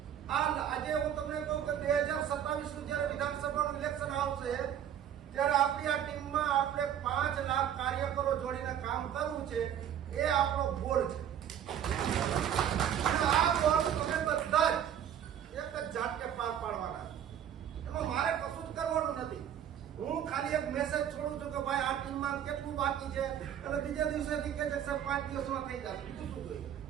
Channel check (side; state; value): left; quieter; 9.7 dB